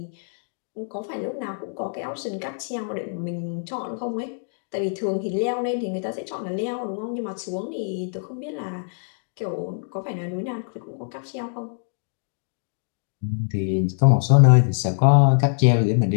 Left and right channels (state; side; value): silent; right; digital silence